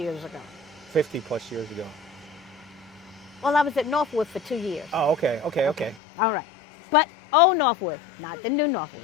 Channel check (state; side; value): drops out; right; at 6.0 s